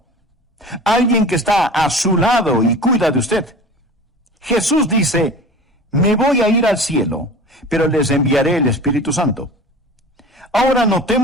Alguien que está a su lado y cuida de usted. Jesús dice, me voy a ir al cielo, pero les enviaré el Espíritu Santo. Ahora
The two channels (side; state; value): both; normal; correlation 0.37